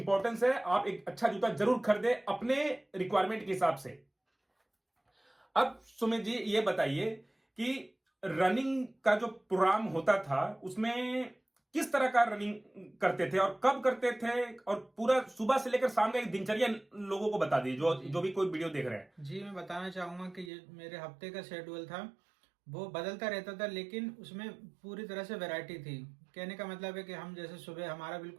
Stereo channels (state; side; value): drops out; left; at 20.5 s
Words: है, आप एक अच्छा जूता जरूर खरीदे अपने रिक्वायरमेंट के हिसाब से। अब सुमित जी ये बताइए कि रनिंग का जो प्रोग्राम होता था उसमें किस तरह का रनिंग करते थे और कब करते थे, और पूरा सुबह से लेकर शाम का एक दिनचर्या लोगों को बता दीजिए जो भी कोई वीडियो देख रहे हैं। जी, मैं बताना चाहूंगा कि ये मेरे हफ्ते का शेड्यूल था, वो बदलता रहता था, लेकिन उसमें पूरी तरह से वैरायटी थी। कहने का मतलब है कि हम जैसे सुबह हमारा